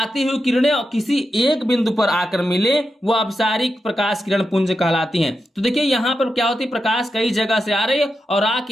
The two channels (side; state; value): both; normal; correlation 0.88